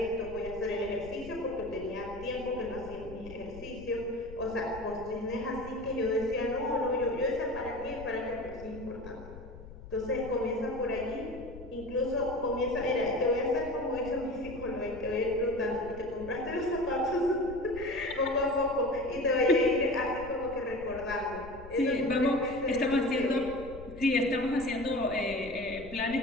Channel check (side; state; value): left; noise; rumble, 15 dB below the sound